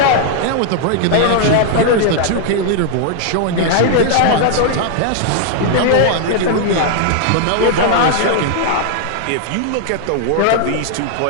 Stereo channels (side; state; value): both; different; correlation 0.00